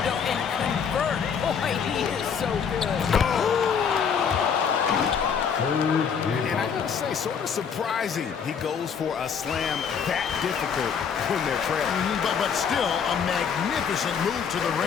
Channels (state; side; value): quieter; right; 6.9 dB